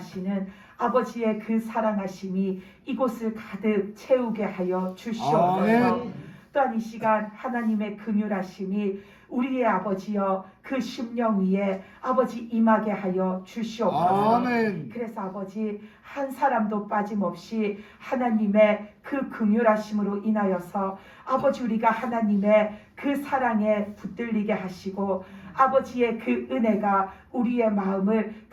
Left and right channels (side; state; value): both; identical; correlation 1.00